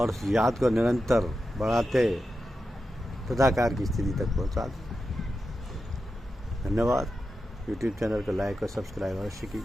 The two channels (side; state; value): both; normal; correlation 0.90